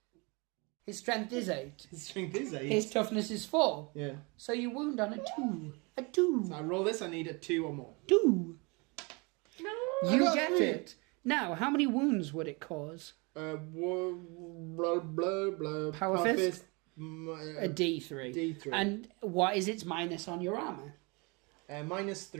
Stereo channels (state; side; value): quieter; left; 29.1 dB